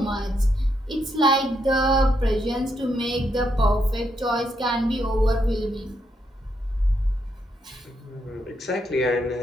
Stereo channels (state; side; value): normal; both; correlation 0.78